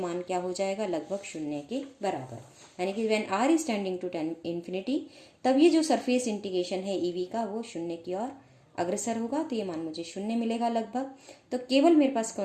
क्या हो जाएगा, लगभग 0 के बराबर। यानी कि when r is tending to infinity, तब ये जो सरफेस इंटीग्रेशन है ई वी का वो 0 की ओर अग्रसर होगा। तो ये मान मुझे 0 मिलेगा लगभग। तो केवल मेरे पास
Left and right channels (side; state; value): both; identical; correlation 1.00